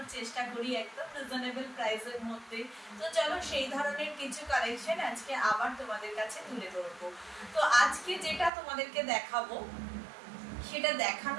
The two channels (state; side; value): drops out; left; at 8.5 s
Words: চেষ্টা করি একদম রিজনেবল প্রাইসের মধ্যে। তো চলো সেই ধরনের কিছু কালেকশন আজকে আবার তোমাদের কাছে তুলে ধরবো। তো আজকে যেটা তোমাদেরকে দেখাবো সেটা